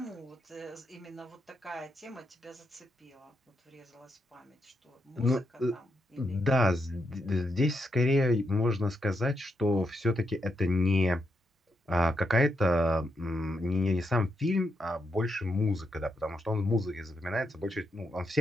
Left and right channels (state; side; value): normal; both; correlation 0.81